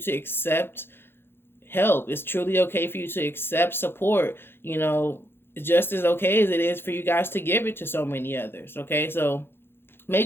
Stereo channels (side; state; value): right; late; 0.11 ms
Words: accept help. It's truly okay for you to accept support. Just as okay as it is for you guys to give it to so many others. Okay. So